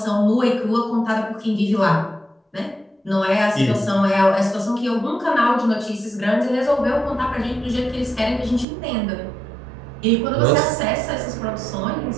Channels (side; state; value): left; drops out; at 8.7 s